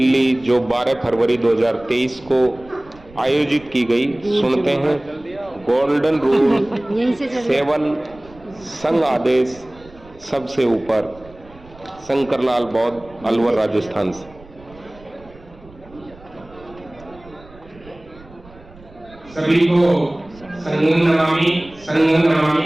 जो 12 फरवरी 2023 को आयोजित की गई। सुनते हैं गोल्डन रूल 7, संघ आदेश सबसे ऊपर। शंकरलाल बौद्ध, अलवर, राजस्थान से। सभी को संघ नमामि संघ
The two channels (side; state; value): right; noise; rumble, 23 dB below the sound